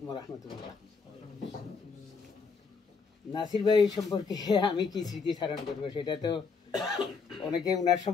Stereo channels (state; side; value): quieter; right; 5.1 dB